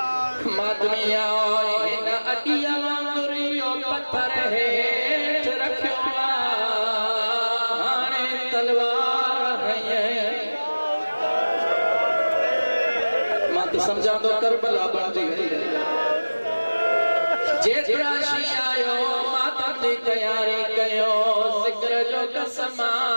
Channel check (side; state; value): both; inverted; correlation -1.00